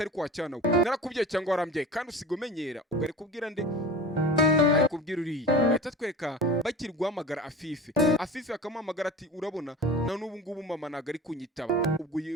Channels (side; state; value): both; normal; correlation 0.36